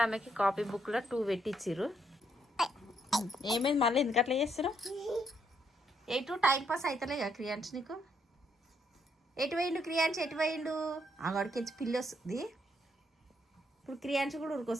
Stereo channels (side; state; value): both; normal; correlation 0.74